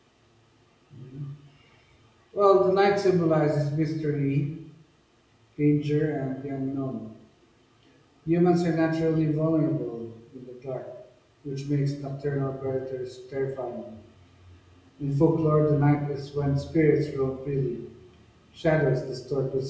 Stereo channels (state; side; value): identical; both; correlation 1.00